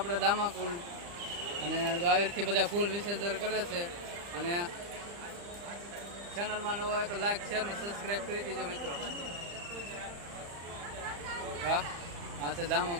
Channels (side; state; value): left; late; 35 ms